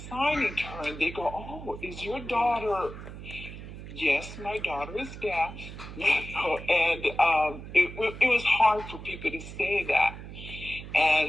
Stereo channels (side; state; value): right; noise; hum, 12 dB below the sound